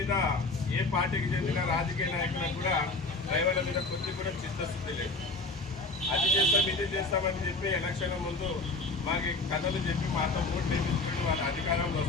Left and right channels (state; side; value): quieter; right; 3.4 dB